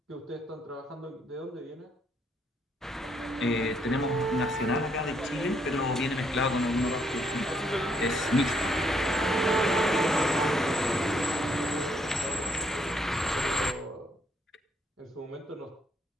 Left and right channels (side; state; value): both; normal; correlation 0.71